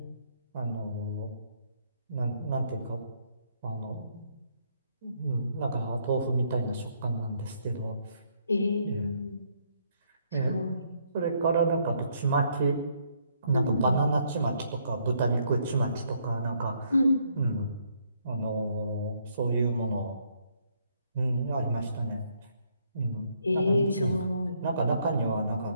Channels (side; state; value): both; inverted; correlation -0.71